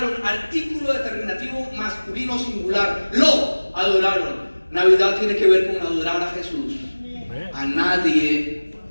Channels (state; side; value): inverted; both; correlation -1.00